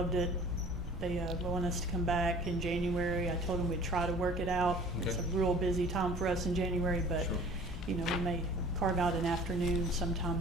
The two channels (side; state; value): both; normal; correlation 0.48